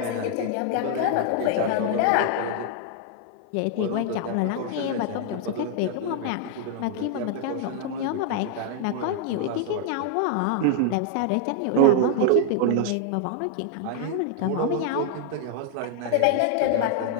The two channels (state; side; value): different; both; correlation 0.00